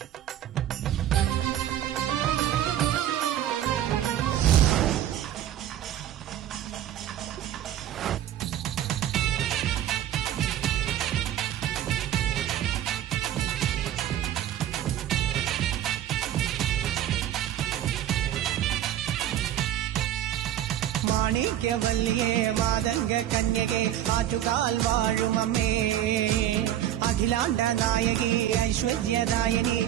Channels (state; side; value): quieter; left; 11.6 dB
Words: മാണിക്യവല്ലിയേ മാതംഗ കന്യകേ ആറ്റുകാൽ വാഴുമമ്മേ അഖിലാണ്ട നായകി ഐശ്വര്യദായകി